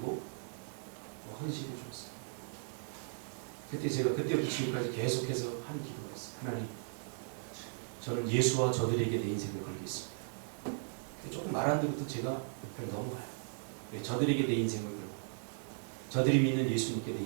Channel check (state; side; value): silent; left; digital silence